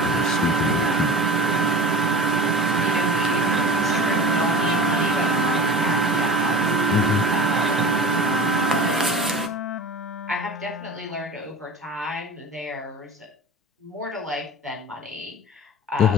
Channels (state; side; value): normal; both; correlation 0.34